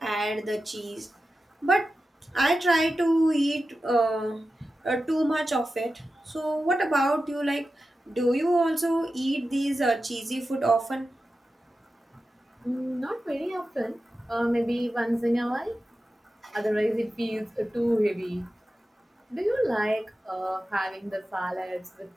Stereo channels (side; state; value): both; normal; correlation 0.92